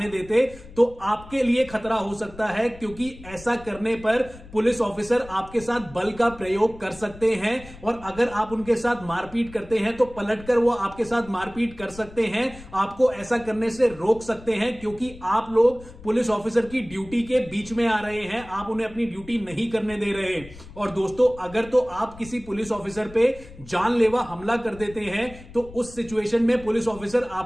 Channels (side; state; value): left; noise; rumble, 18 dB below the sound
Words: देते, तो आपके लिए खतरा हो सकता है, क्योंकि ऐसा करने पर पुलिस ऑफिसर आपके साथ बल का प्रयोग कर सकते हैं। और अगर आप उनके साथ मारपीट करते हैं तो पलटकर वो आपके साथ मारपीट कर सकते हैं, आपको ऐसा करने से रोक सकते हैं, क्योंकि आप लोग पुलिस ऑफिसर की ड्यूटी के बीच में आ रहे हैं, आप उन्हें अपनी ड्यूटी नहीं करने दे रहे। और दोस्तों, अगर तो आप किसी पुलिस ऑफिसर पे जानलेवा हमला कर देते हैं, तो उस सिचुएशन में पुलिस ऑफिसर